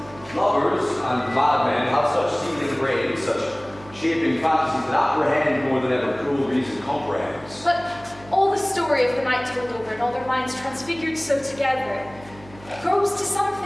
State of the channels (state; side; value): noise; right; hum, 21 dB below the sound